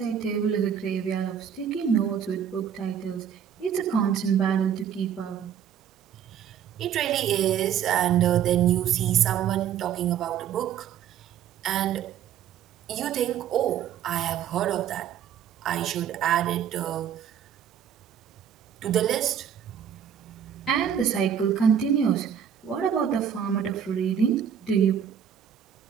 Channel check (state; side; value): quieter; left; 8.8 dB